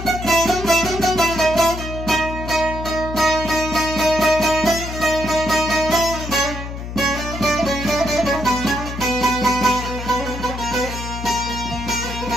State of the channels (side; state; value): left; noise; hum, 8 dB below the sound